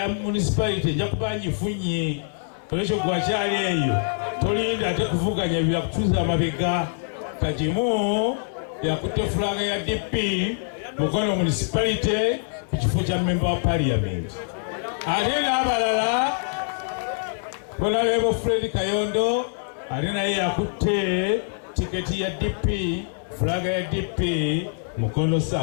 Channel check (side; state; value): right; silent; digital silence